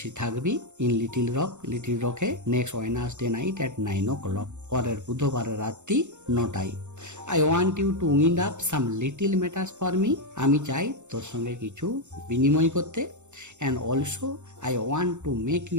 থাকবি, ইন লিটিল রকে next Wednesday night at 9 o'clock, পরের বুধবারের রাত্রি 9টায়। I want you to wind up some little matters for me, আমি চাই তোর সঙ্গে কিছু বিনিময় করতে। And also I want to make you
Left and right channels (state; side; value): late; left; 0.84 ms